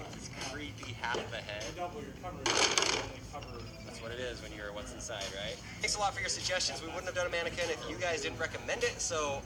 this creepy half of a head. That's what it is when you're what's inside, right? Thanks a lot for your suggestions. We wouldn't have done a mannequin if you guys didn't recommend it, so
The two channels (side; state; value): both; identical; correlation 1.00